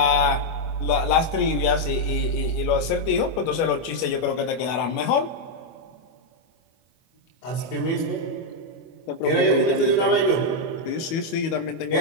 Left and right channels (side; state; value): right; late; 25 ms